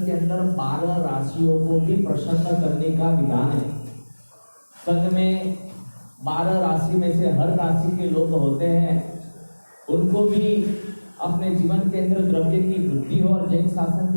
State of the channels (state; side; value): inverted; both; correlation -1.00